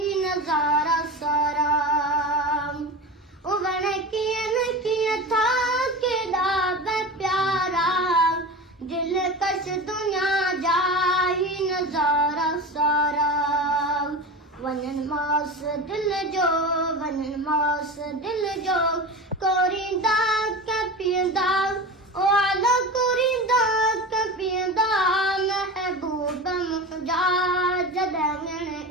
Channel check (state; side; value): normal; both; correlation 0.28